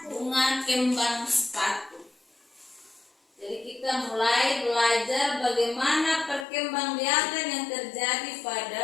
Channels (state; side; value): drops out; right; at 6.5 s